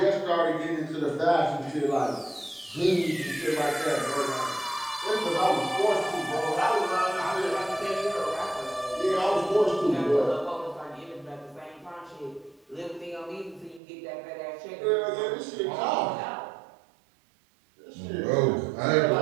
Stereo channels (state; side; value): drops out; left; at 13.8 s